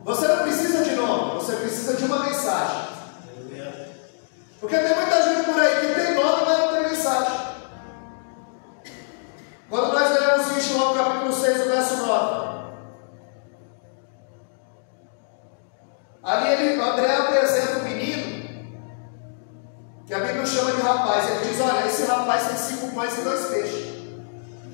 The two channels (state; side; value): silent; right; digital silence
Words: Você não precisa de nome, você precisa de uma mensagem. Porque tem muita gente por aí que tem nome, mas não tem mensagem. Quando nós lemos em João capítulo 6, o verso 9, ali André apresenta um menino que a Bíblia chama de rapaz. Ele diz: olha, esse rapaz tem 5 pães e 2 peixes.